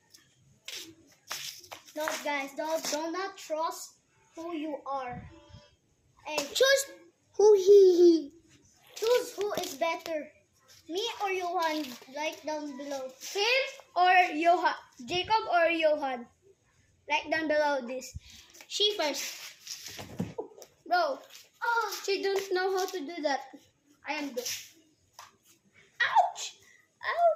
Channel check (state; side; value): identical; both; correlation 1.00